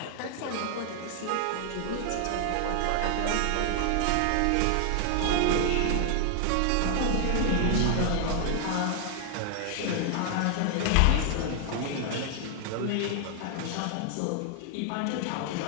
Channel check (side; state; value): both; different; correlation 0.00